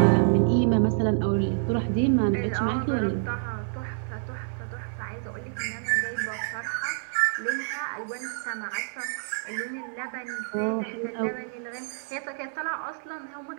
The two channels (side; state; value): left; silent; digital silence